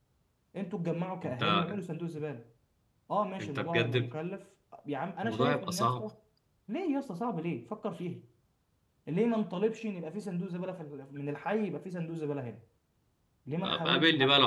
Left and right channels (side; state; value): both; identical; correlation 1.00